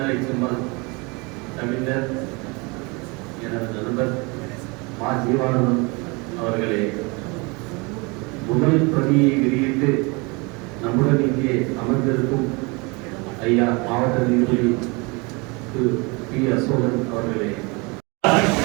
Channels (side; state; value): left; quieter; 28.1 dB